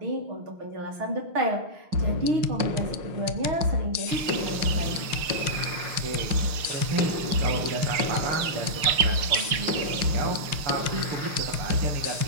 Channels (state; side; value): late; left; 6.6 ms